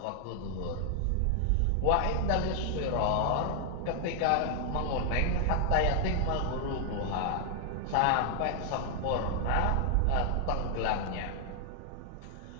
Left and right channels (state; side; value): different; both; correlation 0.00